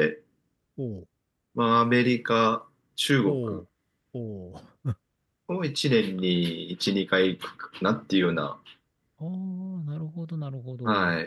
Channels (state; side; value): identical; both; correlation 1.00